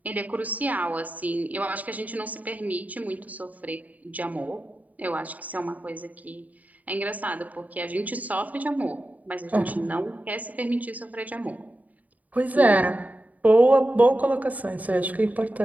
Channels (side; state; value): left; late; 0.074 ms